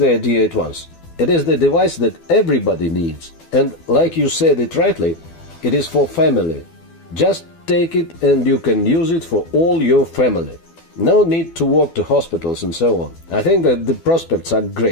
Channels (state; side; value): late; right; 12 ms